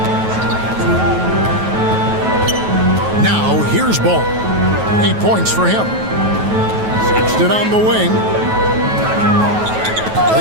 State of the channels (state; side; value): late; left; 9.3 ms